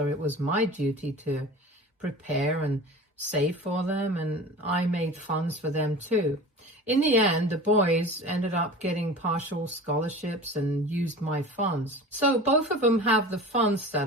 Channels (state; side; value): normal; both; correlation 0.36